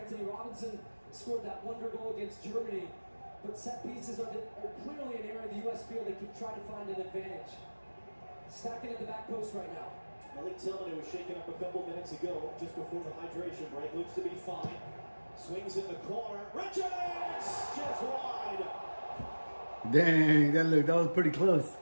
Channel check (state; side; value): inverted; both; correlation -1.00